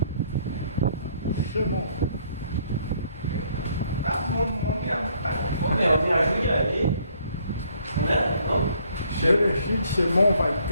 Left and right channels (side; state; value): both; inverted; correlation -0.65